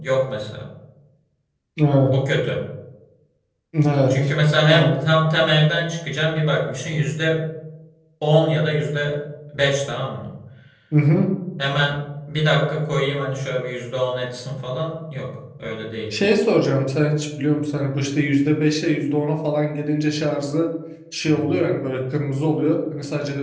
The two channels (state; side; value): identical; both; correlation 1.00